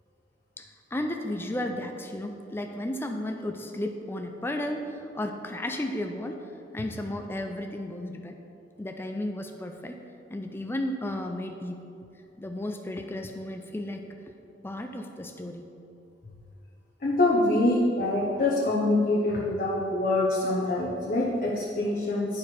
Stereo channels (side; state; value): both; normal; correlation 0.59